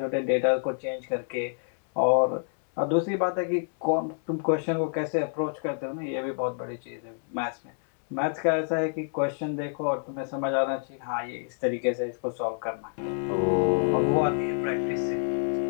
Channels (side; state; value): right; silent; 60 dB below the other